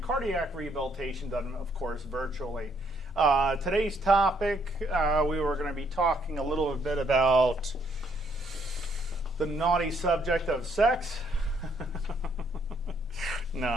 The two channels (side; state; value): both; normal; correlation 0.70